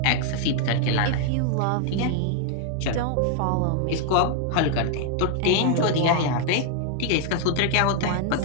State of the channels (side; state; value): both; different; correlation 0.00